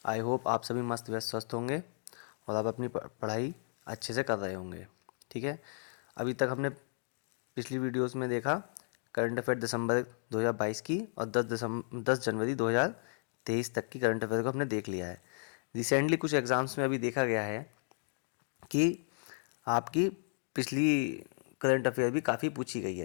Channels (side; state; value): right; silent; 55 dB below the other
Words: आई होप आप सभी मस्त व्यस्त स्वस्थ होंगे और आप अपनी पढ़ाई अच्छे से कर रहे होंगे। ठीक है, अभी तक हमने पिछली वीडियोस में देखा करंट अफेयर दिसंबर 2022 की और 10 जनवरी 2023 तक की करंट अफेयर को हमने देख लिया है। रिसेंटली कुछ एग्ज़ाम्स में अभी देखा गया है कि आपकी पिछली करंट अफेयर भी काफ़ी पूछी गई